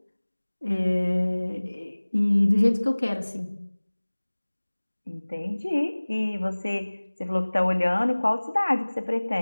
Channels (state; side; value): inverted; both; correlation -1.00